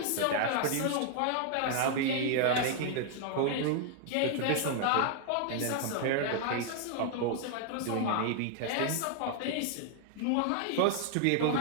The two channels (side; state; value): both; different; correlation 0.00